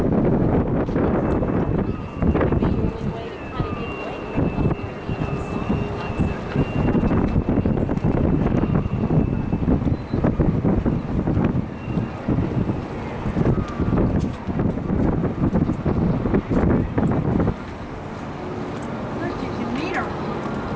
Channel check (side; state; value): both; identical; correlation 1.00